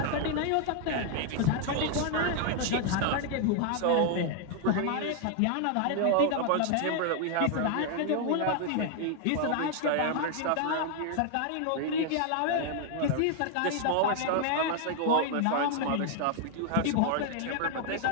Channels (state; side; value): different; both; correlation 0.00